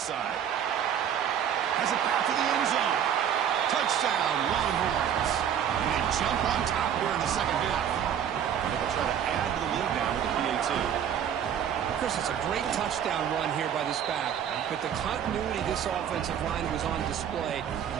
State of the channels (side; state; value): left; quieter; 9.0 dB